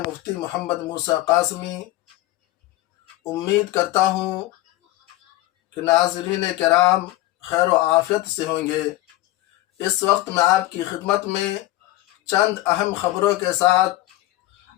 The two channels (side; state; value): right; quieter; 17.1 dB